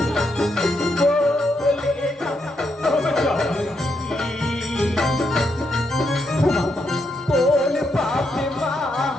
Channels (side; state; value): both; normal; correlation 0.80